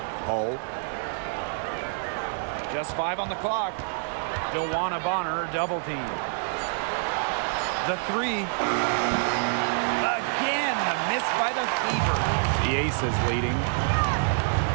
Hull. Just 5 on the clock. DeWanna Bonner double team. The 3. Again, the miss by the Fever. The Aces leading.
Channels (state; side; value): silent; left; 60 dB below the other